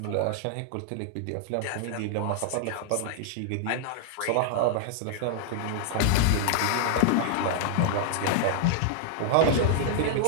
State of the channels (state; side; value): different; both; correlation -0.01